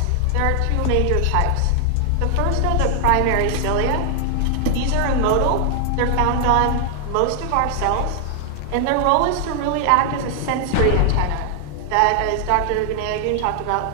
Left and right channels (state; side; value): different; both; correlation 0.00